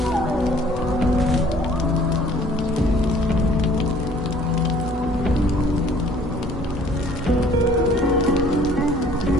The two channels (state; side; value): normal; both; correlation 0.55